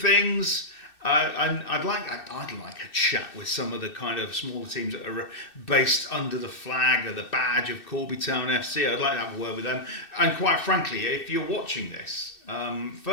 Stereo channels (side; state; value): right; late; 2.6 ms